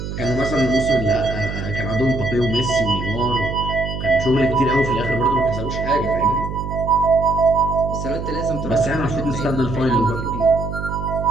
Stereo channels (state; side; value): noise; right; hum, 6 dB below the sound